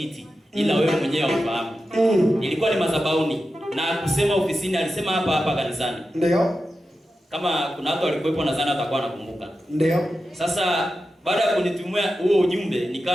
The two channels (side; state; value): both; normal; correlation 0.91